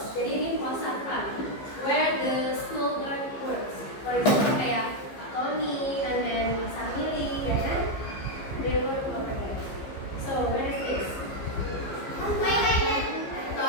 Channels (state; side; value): late; right; 15 ms